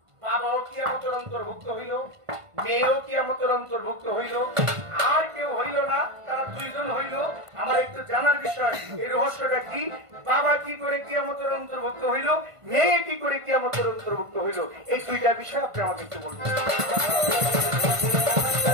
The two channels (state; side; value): late; left; 1.5 ms